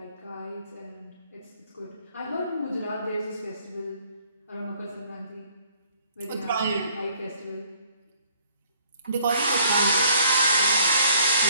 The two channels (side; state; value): both; inverted; correlation -0.60